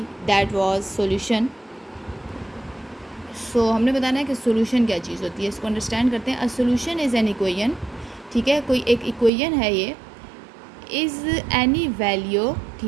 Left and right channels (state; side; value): drops out; left; at 9.3 s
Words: दैट वाज सॉल्यूशन। सो हमने बताना है कि सॉल्यूशन क्या चीज़ होती है, इसको अंडरस्टैंड करते हैं। A solution is an equation, ठीक है, कोई एक इक्वेशन है ये। इज़ एनी वैल्यू,